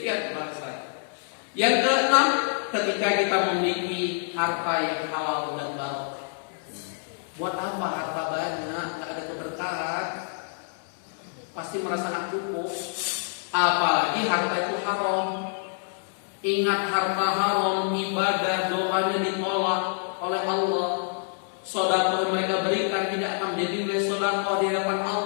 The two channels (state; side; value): silent; right; 60 dB below the other